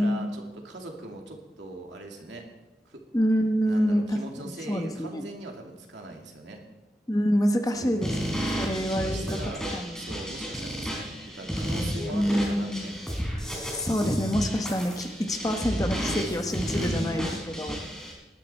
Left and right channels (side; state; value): both; normal; correlation 0.86